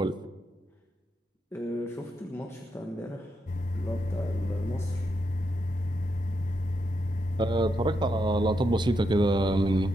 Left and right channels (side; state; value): both; normal; correlation 0.82